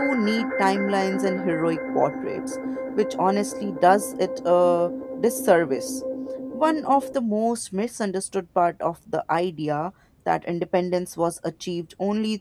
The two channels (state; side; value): identical; both; correlation 1.00